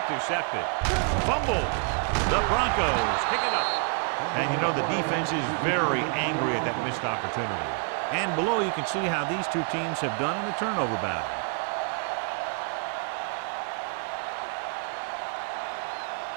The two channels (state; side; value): quieter; left; 39.9 dB